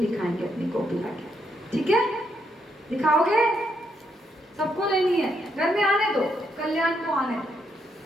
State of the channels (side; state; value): both; normal; correlation 0.77